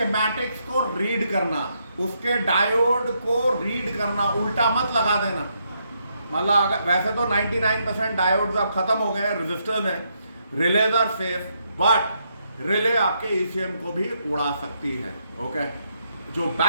को रीड करना, उसके डायोड को रीड करना, उल्टा मत लगा देना। मतलब वैसे तो 99% डायोड्स अब खत्म हो गए हैं, रजिस्टर्स हैं, relays are safe, but relay आपके ECM को भी उड़ा सकती है। ओके, जो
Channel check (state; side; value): inverted; both; correlation -0.77